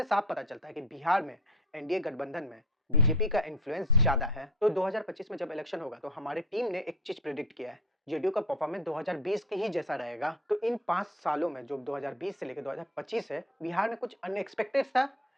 साफ पता चलता है कि बिहार में एनडीए गठबंधन में बीजेपी का इन्फ्लुएंस ज्यादा है। तो 2025 में जब इलेक्शन होगा तो हमारी टीम ने एक चीज प्रेडिक्ट किया है, जेडीयू का परफॉर्मेंस 2020 के ही जैसा रहेगा। तो इन 5 सालों में जो 2020 से लेकर 2025 है, बिहार में कुछ अनएक्सपेक्टेड सा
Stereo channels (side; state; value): both; normal; correlation 0.34